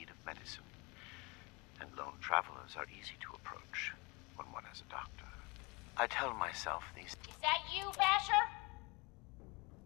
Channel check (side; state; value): right; quieter; 27.2 dB